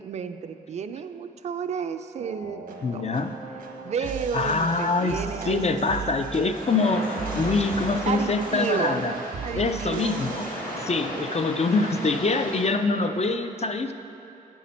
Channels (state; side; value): normal; both; correlation 0.44